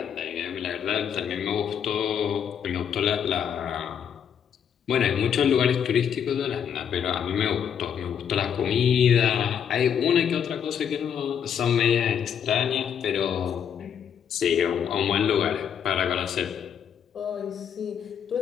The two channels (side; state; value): right; quieter; 8.2 dB